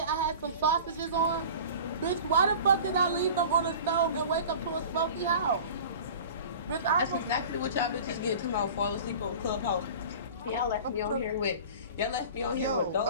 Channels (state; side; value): inverted; both; correlation -0.39